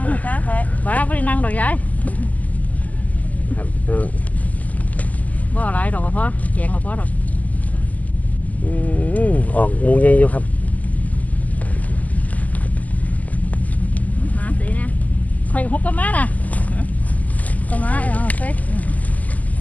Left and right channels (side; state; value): right; late; 0.077 ms